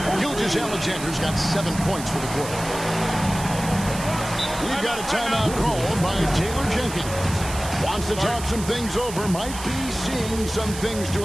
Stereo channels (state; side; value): noise; right; hiss, 11 dB below the sound